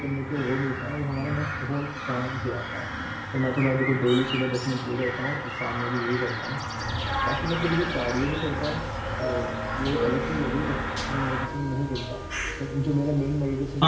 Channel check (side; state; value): both; identical; correlation 1.00